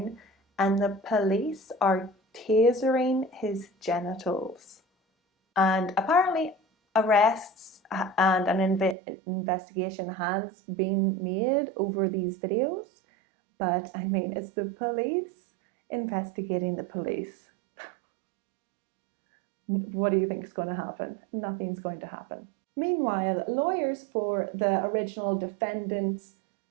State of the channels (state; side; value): drops out; left; at 9.0 s